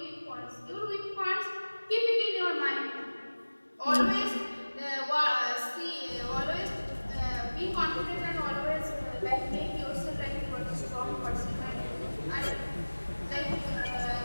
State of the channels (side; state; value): both; inverted; correlation -1.00